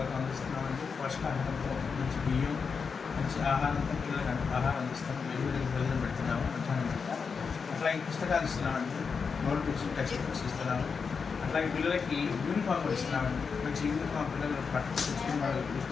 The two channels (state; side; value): quieter; right; 5.5 dB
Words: అందిస్తున్నామండి. పోషకాహారంతో మంచి బియ్యం, మంచి ఆహారంతో పిల్లలకు ఆహారం అందిస్తాము. వెలుగులకి భోజనం పెడుతున్నాము మధ్యాహ్నం పూట. అట్లాగే పుస్తకాలు ఇస్తున్నామండి. నోట్బుక్స్, టెక్స్ట్ బుక్స్ ఇస్తున్నాము. అట్లాగే పిల్లలకి యూనిఫామ్ కూడా ఇస్తున్నామండి. మంచి యూనిఫామ్ పిల్లలు పట్టుకుని వాళ్ళు